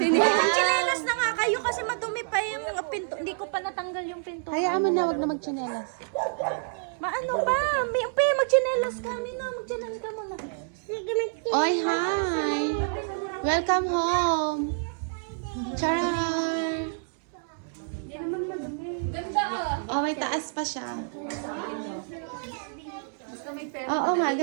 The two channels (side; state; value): left; silent; 59 dB below the other